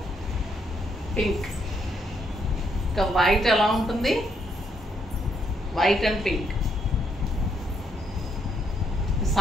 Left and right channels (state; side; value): normal; both; correlation 0.74